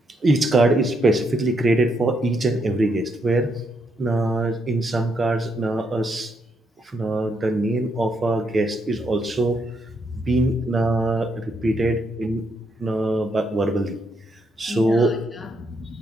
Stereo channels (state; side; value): normal; both; correlation 0.77